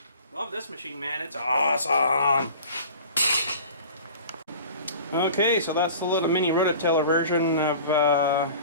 this machine, man. It's awesome. Okay, so that's the little mini rototiller version of the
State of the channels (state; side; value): inverted; both; correlation -0.42